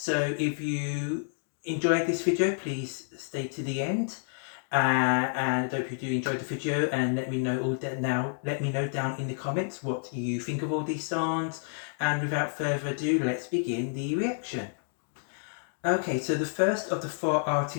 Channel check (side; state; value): right; silent; digital silence